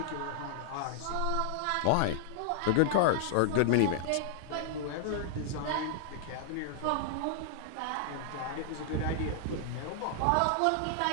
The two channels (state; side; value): different; both; correlation -0.01